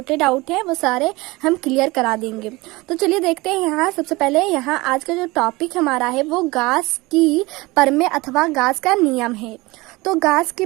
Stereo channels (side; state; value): left; quieter; 22.1 dB